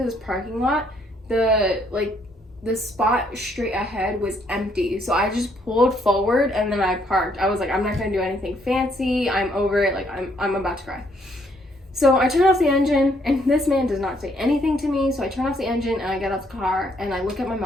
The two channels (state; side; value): normal; both; correlation 0.69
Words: this parking lot, the spot straight ahead was empty. So I just pulled forward and then I parked. I was like, I'm not gonna do anything fancy. I'm over it. Like I'm about to cry. So I turn off the engine and this man does not say anything to me. So I turn off the engine and I get out the car and I look at my